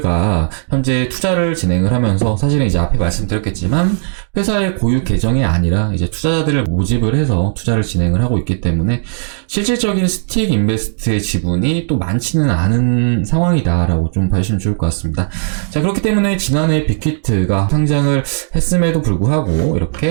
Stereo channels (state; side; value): silent; left; digital silence